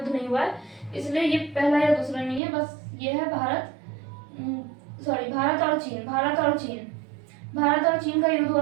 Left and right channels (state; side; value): drops out; left; at 2.4 s